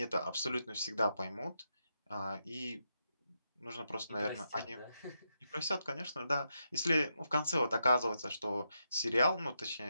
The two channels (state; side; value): inverted; both; correlation -0.84